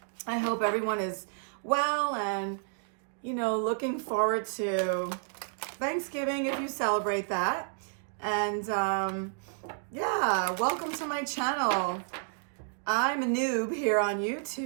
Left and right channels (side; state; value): left; silent; digital silence